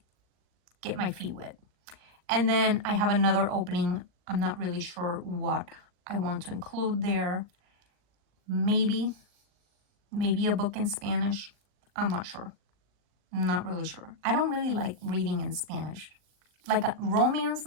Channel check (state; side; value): late; left; 39 ms